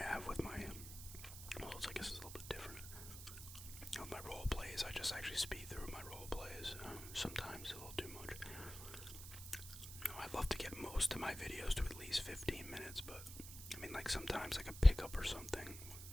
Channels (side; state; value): right; noise; hiss, 11 dB below the sound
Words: have with my, well, I guess it's a little bit different. With my role plays, I just actually speed through my role plays. Sometimes a little too much. I'd love to get most of my videos to at least 15 minutes, but I mean, like sometimes like a pickup or something,